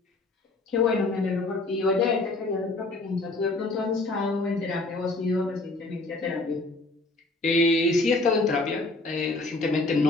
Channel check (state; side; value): quieter; right; 3.1 dB